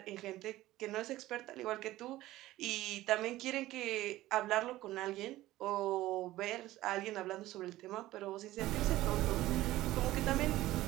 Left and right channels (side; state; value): left; quieter; 16.2 dB